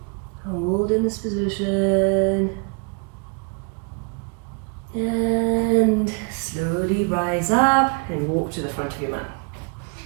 Hold in this position. And slowly rise up and walk to the front of your mat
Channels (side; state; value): left; quieter; 33.4 dB